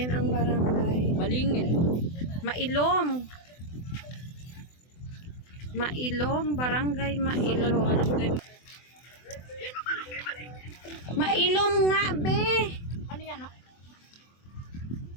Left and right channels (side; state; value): right; late; 24 ms